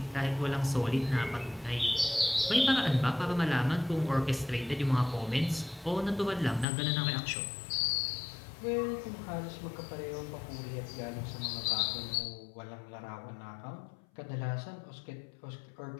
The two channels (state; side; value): drops out; right; at 6.7 s